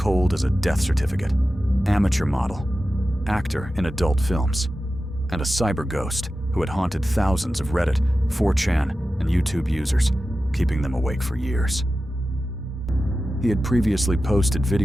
as a death certificate. Amateur model. Actor in adult films. And a cyber ghost who had haunted thousands of Reddit, 4chan, and YouTube users, keeping them awake for years. He had previously posted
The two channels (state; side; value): normal; both; correlation 0.93